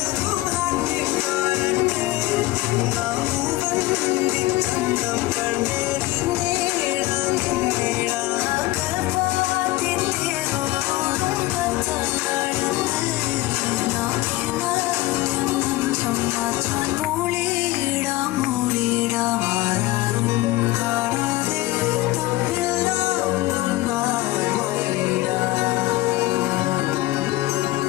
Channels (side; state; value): right; quieter; 18.3 dB